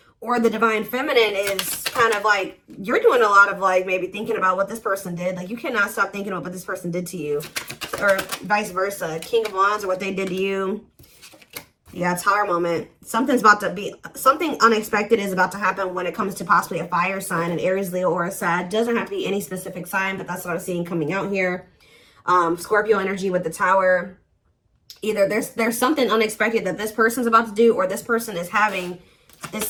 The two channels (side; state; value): both; identical; correlation 1.00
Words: or the Divine Feminine is kind of like, you're doing a lot of like maybe thinking about what this person did. Like you cannot stop thinking about what this person did to you, or vice versa. King of Wands or what they did to you. Yeah, Tower moment. Something unexpected is about to happen when it comes to possibly a fire sign, an Aries, Leo, or a Sag. Doesn't have to be any specific sign, but that's what I'm seeing coming out here. Scorpio energy with the Tower. Either there's something unexpected that this person's about to do, or this person is having,